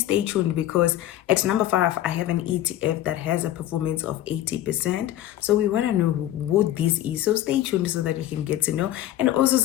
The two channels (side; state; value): right; quieter; 13.2 dB